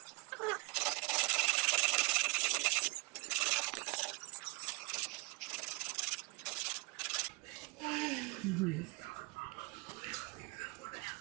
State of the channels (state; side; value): quieter; left; 27.5 dB